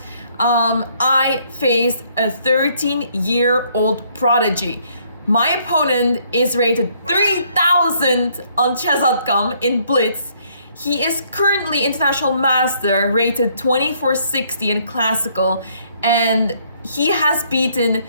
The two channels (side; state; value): both; inverted; correlation -0.67